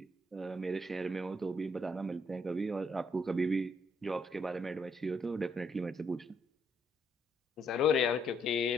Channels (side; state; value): both; normal; correlation 0.72